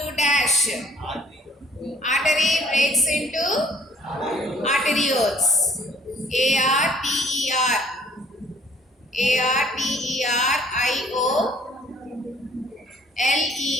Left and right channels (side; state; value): both; normal; correlation 0.58